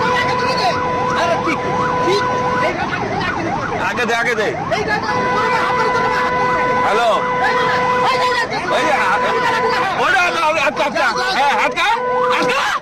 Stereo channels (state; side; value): identical; both; correlation 1.00